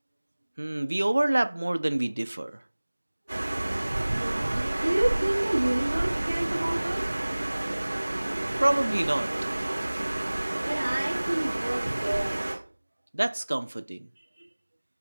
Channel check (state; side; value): inverted; both; correlation -1.00